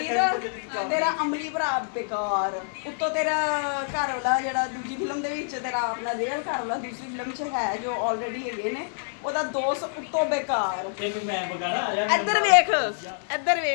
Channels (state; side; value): silent; right; 57 dB below the other